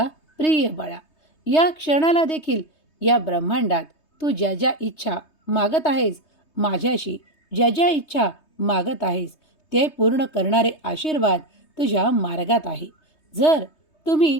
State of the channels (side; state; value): right; late; 3.2 ms